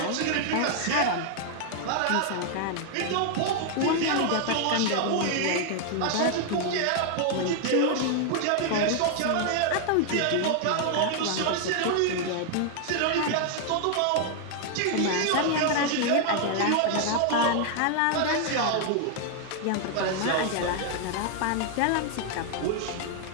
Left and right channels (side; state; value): both; different; correlation 0.00